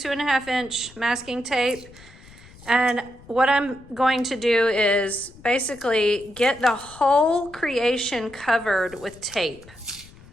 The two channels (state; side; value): noise; left; rumble, 22 dB below the sound